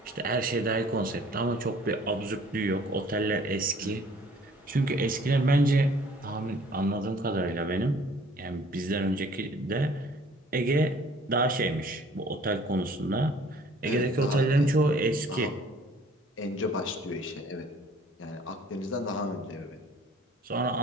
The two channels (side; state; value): both; normal; correlation 0.54